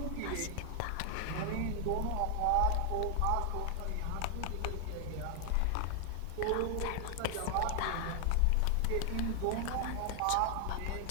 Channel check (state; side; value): different; both; correlation 0.00